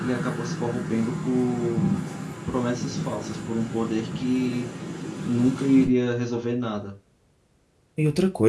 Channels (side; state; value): both; identical; correlation 1.00